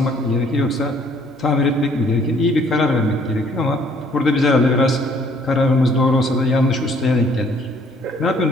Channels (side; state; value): both; normal; correlation 0.61